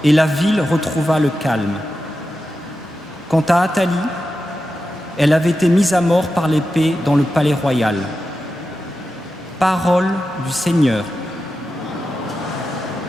et la ville retrouva le calme. Quant à Athalie, elle avait été mise à mort par l'épée dans le palais royal. Parole du Seigneur.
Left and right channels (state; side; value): normal; both; correlation 0.91